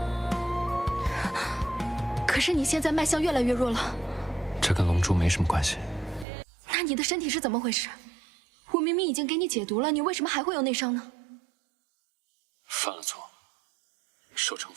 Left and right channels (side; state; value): left; drops out; at 6.2 s